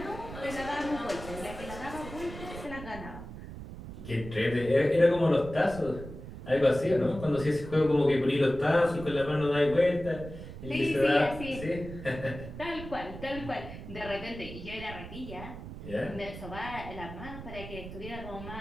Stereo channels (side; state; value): right; noise; rumble, 11 dB below the sound